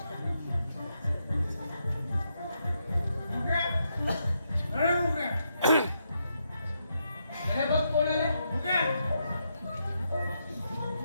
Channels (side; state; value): both; inverted; correlation -0.81